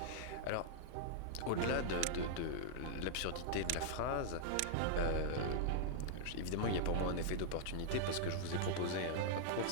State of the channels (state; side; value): different; both; correlation -0.01